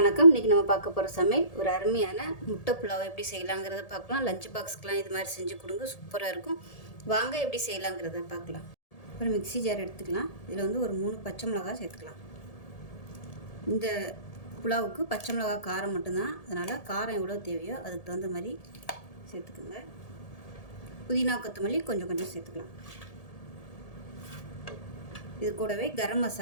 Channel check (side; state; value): right; late; 1.7 ms